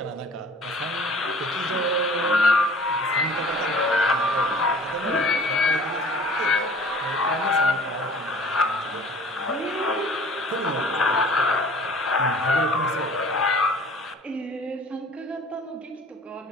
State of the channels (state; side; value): normal; both; correlation 0.49